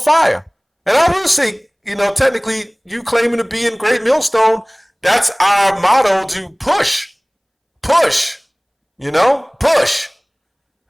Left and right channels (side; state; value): both; identical; correlation 1.00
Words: And I will say, technically, you claiming to be in Great Millstone, that's our motto, to push. Push. Push.